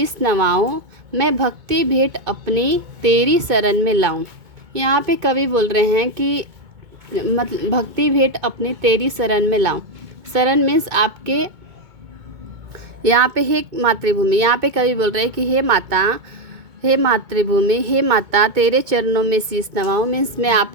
नवाऊं, मैं भक्ति भेंट अपनी तेरी शरण में लाऊं। यहाँ पे कवि बोल रहे हैं कि मतलब भक्ति भेंट अपनी तेरी शरण में लाऊं। शरण मीन्स आपके, यहाँ पे हे मातृभूमि, यहाँ पे कवि बोल रहे हैं कि हे मातृभूमि, हे माता तेरे चरणों में शीश नवाऊं। मीन्स मैं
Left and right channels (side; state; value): left; late; 2.2 ms